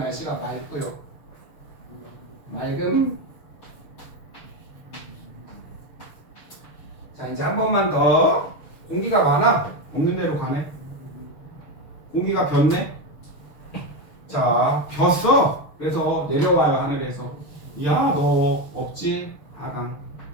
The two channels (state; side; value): late; right; 6.5 ms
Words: 맑고요. 맑음. 자, 이제 한 번만 더. 공기가 많아? 없는 데로 가네. 공기가 변네? 자, 변어. 그래서 내려와요, 하늘에서. 야, 너 없지? 하강.